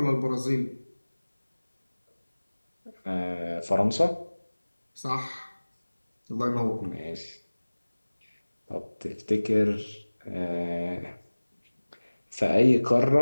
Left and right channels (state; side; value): inverted; both; correlation -1.00